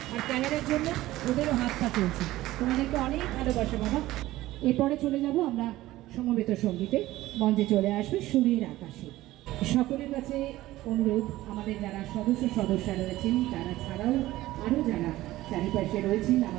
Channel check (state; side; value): quieter; left; 16.5 dB